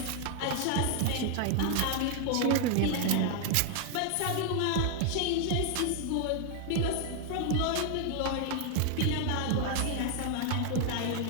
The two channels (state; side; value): different; both; correlation 0.00